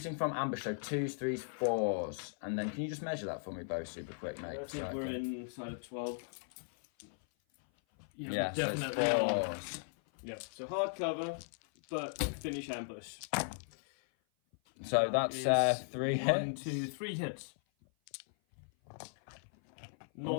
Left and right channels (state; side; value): silent; right; 53 dB below the other